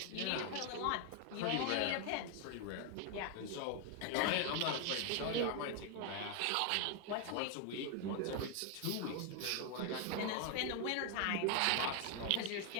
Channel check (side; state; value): both; different; correlation 0.01